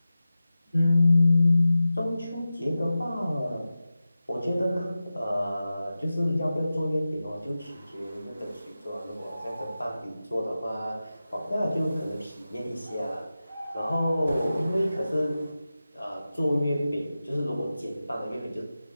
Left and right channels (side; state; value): both; inverted; correlation -0.94